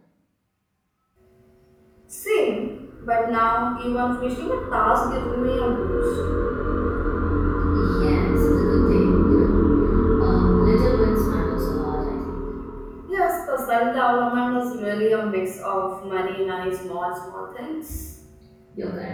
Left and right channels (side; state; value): both; identical; correlation 1.00